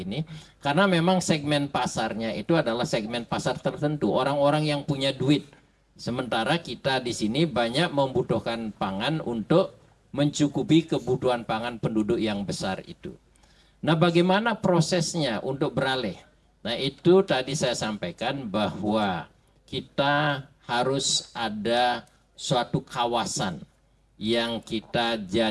Karena memang segmen pasarnya itu adalah segmen pasar tertentu, orang-orang yang punya duit. Sementara kita di sini banyak membutuhkan pangan untuk mencukupi kebutuhan pangan penduduk yang besar itu. Nah, bagaimana prosesnya untuk beralih? Nah, itu tadi saya sampaikan bahwa kita harus ada suatu kawasan yang kita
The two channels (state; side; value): identical; both; correlation 1.00